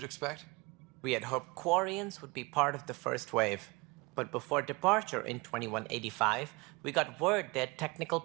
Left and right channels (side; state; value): left; quieter; 25.7 dB